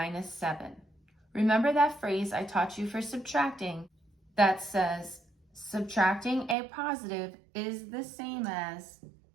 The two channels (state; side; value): drops out; left; at 6.6 s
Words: 7. Remember that phrase I taught you for subtracting that says subtracting a positive is the same as